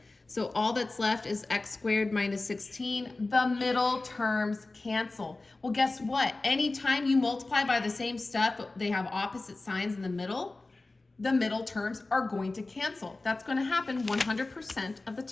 So all that's left is x squared minus 16. The middle terms cancel. Well, guess what? Anytime you multiply by the same stuff, but they have opposite signs in the middle terms are going to cancel. That's going to happen 100% of the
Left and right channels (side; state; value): right; quieter; 3.2 dB